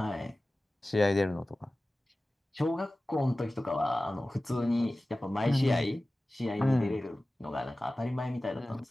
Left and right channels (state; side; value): normal; both; correlation 0.97